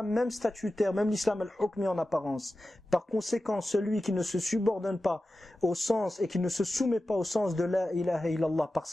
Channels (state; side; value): normal; both; correlation 0.94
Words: même statutaire, même l'islam al-hukmi en apparence. Par conséquent, celui qui ne se subordonne pas au sens et qui ne se soumet pas au sens de la ilaha illallah par